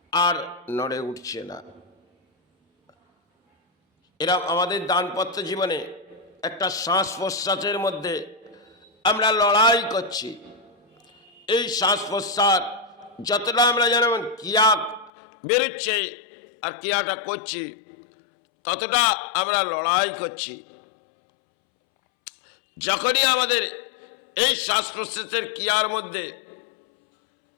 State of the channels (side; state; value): right; drops out; at 15.1 s